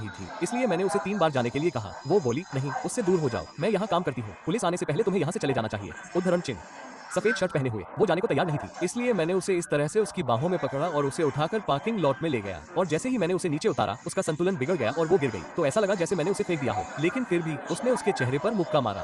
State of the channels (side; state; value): both; identical; correlation 1.00